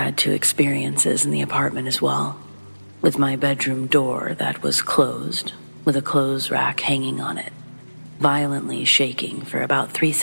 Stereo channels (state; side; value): inverted; both; correlation -1.00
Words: 2 experiences in the apartment as well, with my bedroom door that was closed with a clothes rack hanging on it, violently shaking for about 3